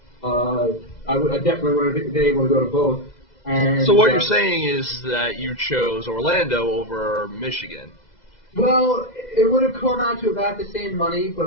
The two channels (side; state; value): right; late; 2.0 ms